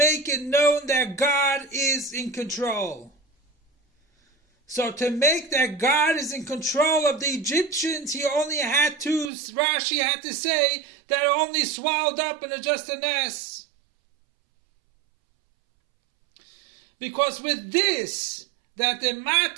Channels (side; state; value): left; drops out; at 9.3 s